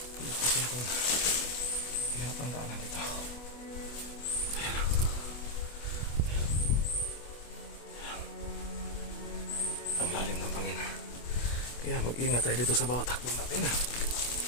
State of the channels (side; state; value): right; late; 25 ms